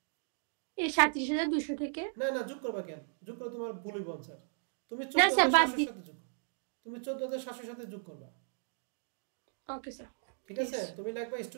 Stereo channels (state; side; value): silent; left; digital silence